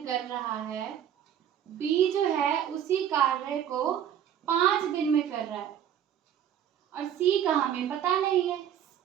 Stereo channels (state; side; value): quieter; left; 9.7 dB